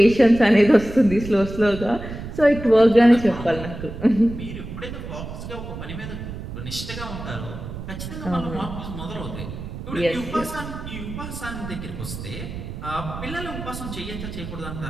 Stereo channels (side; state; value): right; noise; rumble, 9 dB below the sound